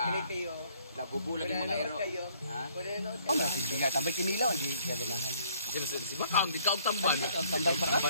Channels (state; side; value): inverted; both; correlation -0.63